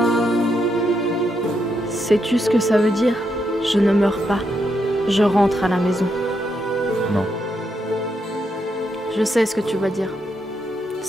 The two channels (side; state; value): both; normal; correlation 0.80